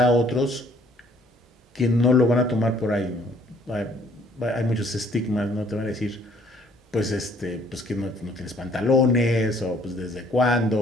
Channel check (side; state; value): both; normal; correlation 0.60